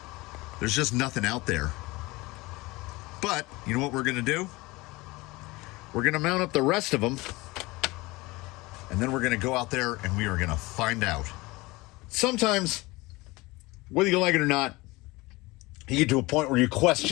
there's just nothing out there. But you know what we're going to do? We're going to mount up the rest of them, and then we're going to go out there and we are going to find out. Sometimes, whether you like it or not, you get to a point where you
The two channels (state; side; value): quieter; right; 22.2 dB